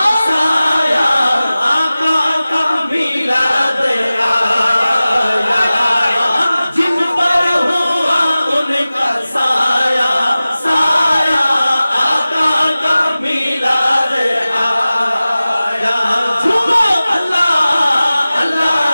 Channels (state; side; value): inverted; both; correlation -0.97